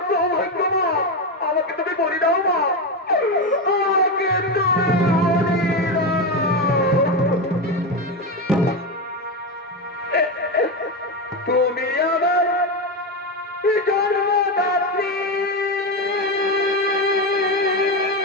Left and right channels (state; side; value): normal; both; correlation 0.13